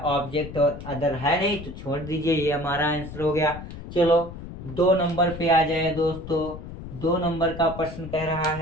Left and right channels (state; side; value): noise; left; rumble, 11 dB below the sound